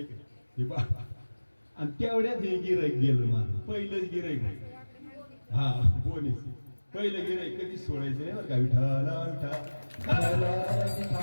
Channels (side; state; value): both; inverted; correlation -1.00